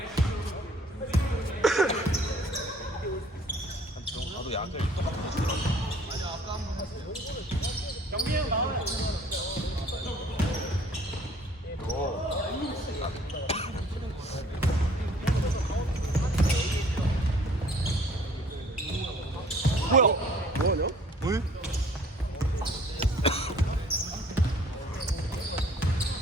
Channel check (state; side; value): normal; both; correlation 0.55